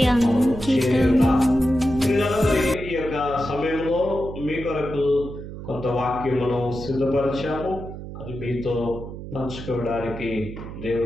అంకితము. ఈ యొక్క సమయంలో మీ కొరకు కొంత వాక్యమును సిద్ధపరిచాము. అది మీతో పంచుకోవడానికి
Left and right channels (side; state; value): right; noise; hum, 11 dB below the sound